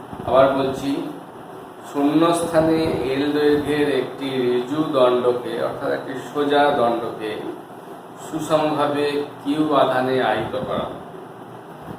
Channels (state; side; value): identical; both; correlation 1.00